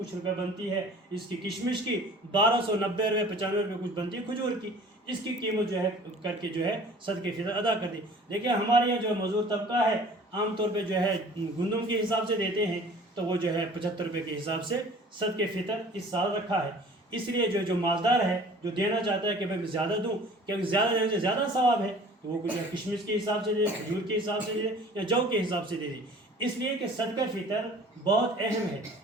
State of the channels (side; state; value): both; normal; correlation 0.48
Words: روپے بنتی ہے اس کی کشمش کی، 1290 روپے 95 روپے کچھ بنتی ہے کھجور کی. اس کی قیمت جو ہے کر کے جو ہے صدقے فطر ادا کر دی. دیکھیں ہمارے یہاں جو مزدور طبقہ ہے عام طور پہ جو ہے گندم کے حساب سے دیتے ہیں تو وہ جو ہے 75 روپے کے حساب سے صدقے فطر اس سال رکھا ہے. اس لیے جو مالدار ہے جو دینا چاہتا ہے کہ میں زیادہ دوں کیونکہ زیادہ دینے سے زیادہ ثواب ہے تو وہ کچھ کشمش کے حساب سے دے، کھجور کے حساب سے دے یا جو کے حساب سے دے دے. اس لیے کہ صدقہ فطر بہت اہم ہے.